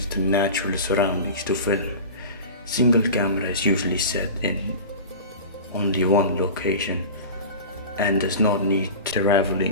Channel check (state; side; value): inverted; both; correlation -0.32